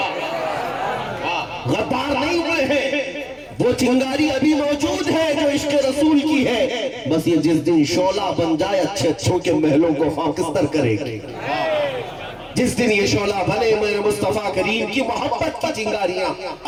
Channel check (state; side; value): identical; both; correlation 1.00